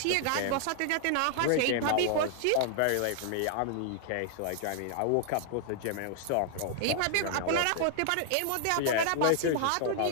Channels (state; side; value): different; both; correlation 0.00